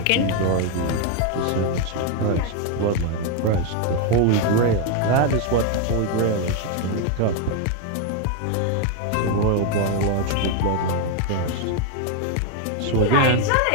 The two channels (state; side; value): different; both; correlation 0.01